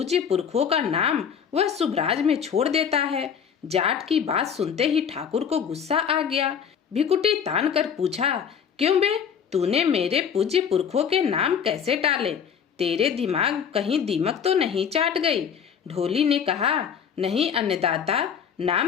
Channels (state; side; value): quieter; right; 7.6 dB